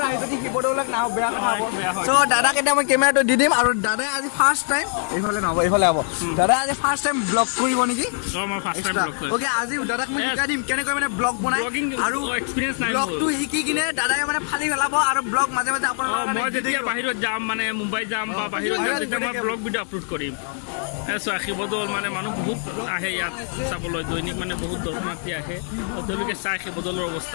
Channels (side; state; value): right; silent; 57 dB below the other